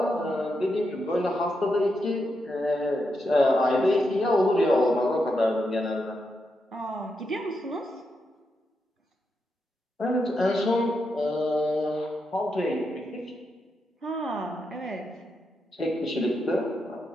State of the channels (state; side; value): normal; both; correlation 0.84